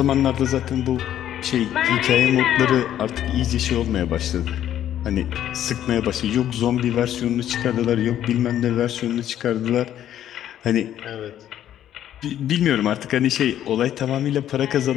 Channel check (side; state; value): right; quieter; 11.2 dB